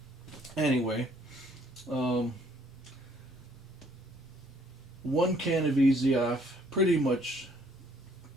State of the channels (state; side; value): normal; both; correlation 0.63